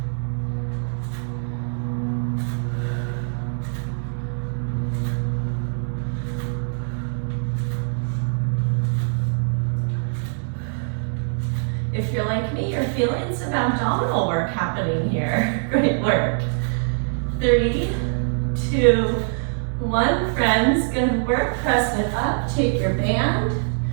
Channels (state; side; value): silent; left; 63 dB below the other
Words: If you're like me, you're feeling some abdominal work happening here. Great work. 3, 2, 1, friends. Good work. Press it up. Take your band.